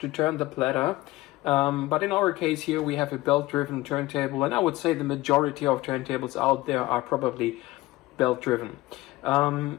turn the platter. But in our case here, we have a belt-driven turntable, and I would say the majority of turntables out there are probably belt-driven.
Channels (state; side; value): quieter; right; 18.8 dB